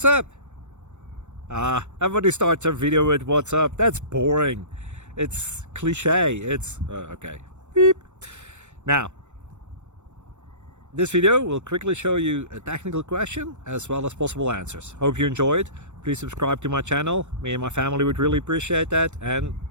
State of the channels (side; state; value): left; late; 0.84 ms